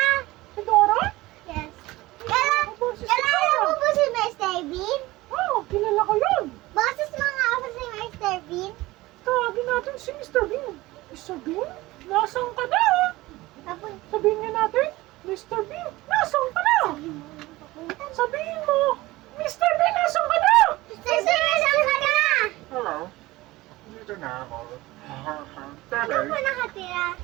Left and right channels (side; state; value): left; quieter; 19.2 dB